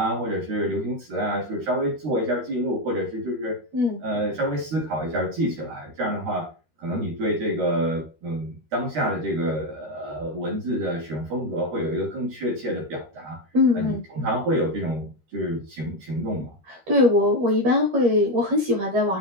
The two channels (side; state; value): left; late; 13 ms